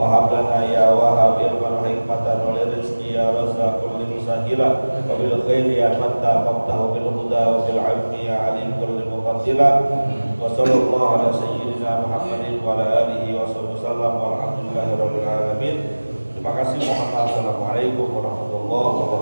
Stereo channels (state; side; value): inverted; both; correlation -1.00